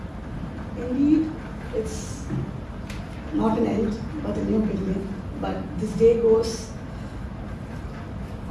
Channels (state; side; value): identical; both; correlation 1.00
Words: Indeed, it's not an end, but a new beginning. But this day goes